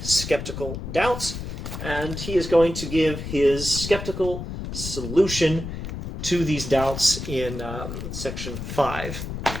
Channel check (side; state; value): left; noise; rumble, 7 dB below the sound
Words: skeptical doubts, and he is going to give his skeptical solution to these doubts in section 5.